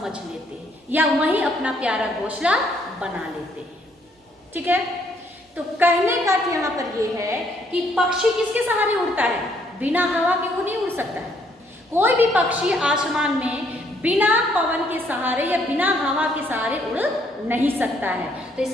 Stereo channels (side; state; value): both; normal; correlation 0.68